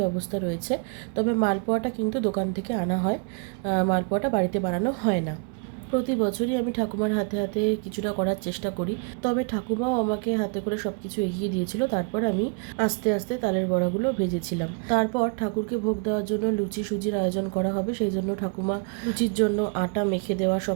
ব্যবস্থা রয়েছে। তবে মালপোয়াটা কিন্তু দোকান থেকে আনা হয়, মালপোয়াটা বাড়িতে বানানো হয় না। প্রতি বছরই আমি ঠাকুমার হাতে হাতে কিছুটা করার চেষ্টা করি, তবে ঠাকুমাও আমাকে হাতে করে সব কিছু এগিয়ে দিয়েছিল। তারপর আমি আস্তে আস্তে তালের বড়াগুলো ভেজেছিলাম। তারপর ঠাকুরকে ভোগ দেওয়ার জন্য লুচি সুজির আয়োজন করা হবে, সেই জন্য ঠাকুমা লুচির জন্য আটা মেখে দেওয়া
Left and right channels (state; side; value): quieter; left; 35.9 dB